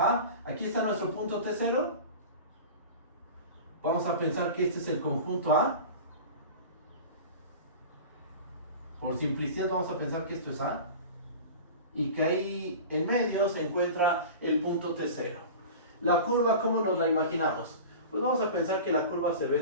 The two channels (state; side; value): inverted; both; correlation -0.35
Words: Aquí está nuestro punto T0. Vamos a pensar que este es el conjunto A. Por simplicidad vamos a pensar que esto es A. Y que ahí en medio se encuentra el punto T0. La curva, ¿cómo nos la imaginamos? Pues vamos a pensar que la curva se ve